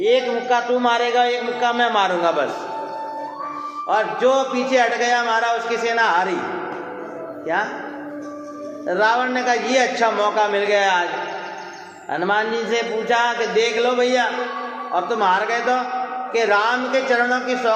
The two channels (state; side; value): identical; both; correlation 1.00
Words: मुक्का तू मारेगा, एक मुक्का मैं मारूंगा बस, और जो पीछे हट गया मारा उसकी सेना हारी। क्या? रावण ने कहा ये अच्छा मौका मिल गया आज। हनुमान जी से पूछा कि देख लो भैया, अब तुम हार गए तो, कि राम के चरणों की